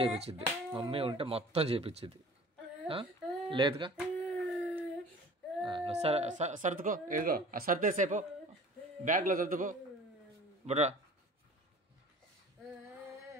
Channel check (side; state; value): both; normal; correlation 0.45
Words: చేపించిద్ది. లేదుగా. సర్దుకో. ఏదో సర్దేసేపో, బ్యాగ్లో సర్దుకో. బుడ్రా